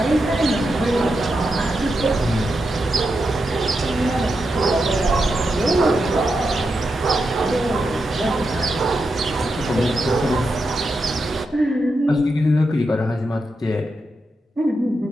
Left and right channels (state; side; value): normal; both; correlation 0.87